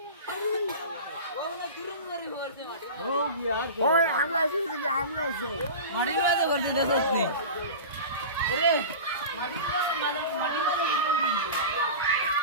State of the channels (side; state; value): both; inverted; correlation -0.32